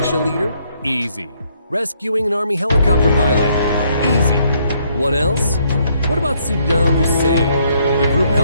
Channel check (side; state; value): both; inverted; correlation -0.70